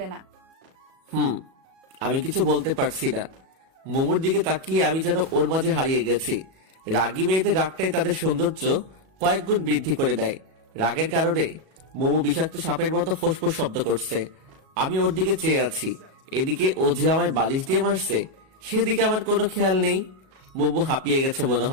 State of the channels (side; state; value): left; late; 37 ms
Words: না। আমি কিছু বলতে পারছি না। মোমোর দিকে তাকিয়ে আমি যেন ওর মাঝে হারিয়ে গেছি। রাগী মেয়েদের রাগটাই তাদের সৌন্দর্য কয়েক গুণ বৃদ্ধি করে দেয়। রাগের কারণে মোমো বিষাক্ত সাপের মতো ফোঁসফোঁস শব্দ করছে। আমি ওর দিকে চেয়ে আছি। এদিকে ও যে আমায় বালিশ দিয়ে মারছে, সেদিকে আমার কোনো খেয়াল নেই। মোমো হাঁপিয়ে গেছে মনে